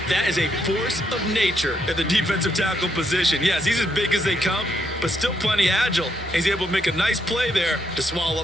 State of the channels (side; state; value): both; normal; correlation 0.77